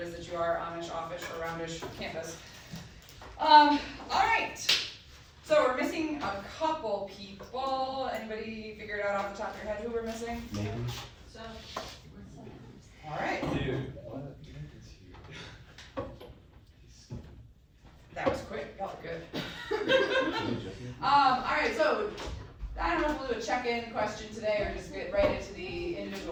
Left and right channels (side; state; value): both; identical; correlation 1.00